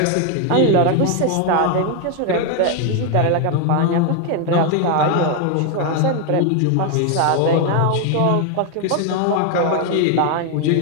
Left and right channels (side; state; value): both; different; correlation 0.01